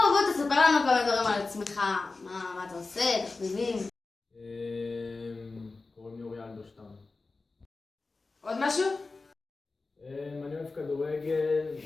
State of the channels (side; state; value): right; quieter; 3.7 dB